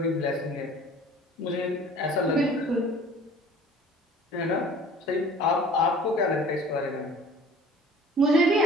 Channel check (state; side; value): normal; both; correlation 0.48